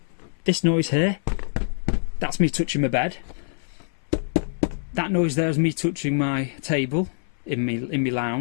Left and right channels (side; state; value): right; silent; 61 dB below the other